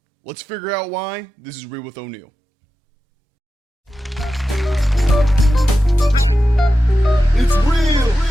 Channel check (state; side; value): normal; both; correlation 0.92